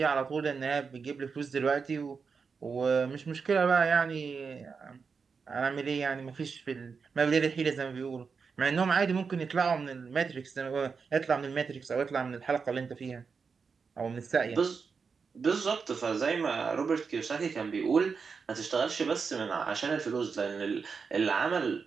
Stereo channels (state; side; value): quieter; left; 5.4 dB